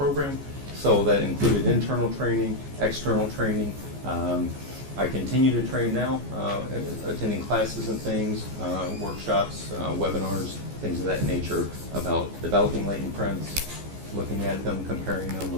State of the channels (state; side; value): late; left; 14 ms